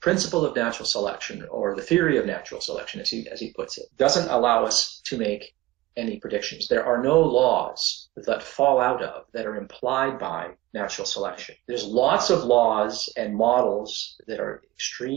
of natural selection, or the theory of natural selection, as he puts it, doesn't allow us to make any predictions. There are no laws that fall out of, that are implied by natural selection. There's lots of laws and models that are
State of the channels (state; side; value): quieter; left; 18.1 dB